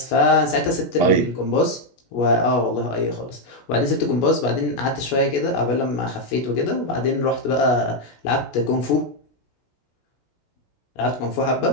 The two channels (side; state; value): right; late; 16 ms